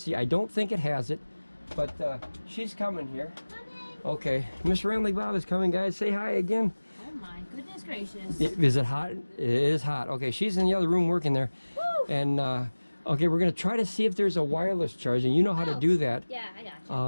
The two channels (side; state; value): both; inverted; correlation -1.00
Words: I don't think it has it, but she's coming here. Okay, Miss Ramblin Bob is coming, guys. Say hi again. Oh my goodness gracious. Is it hot? It is hot. Okay, she's in the other room working there. Woo! And okay, we're going to try to see if there's a wireless charging. You know how to do that. Yeah, I